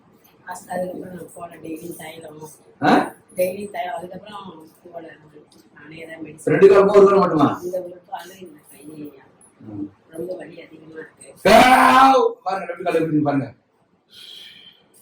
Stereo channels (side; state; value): both; identical; correlation 1.00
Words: ரெண்டு காலமும் ஒரு காலம் மட்டுமா? பாருங்க, ரெண்டு காலம் எப்படி பாருங்க.